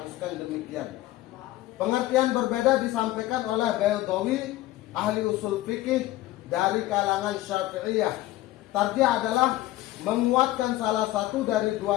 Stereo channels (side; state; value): right; quieter; 16.1 dB